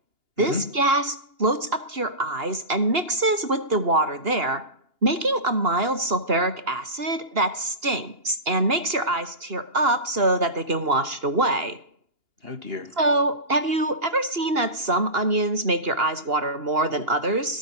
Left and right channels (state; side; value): late; left; 2.8 ms